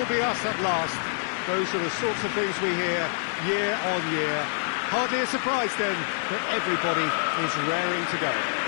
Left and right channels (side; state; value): right; silent; digital silence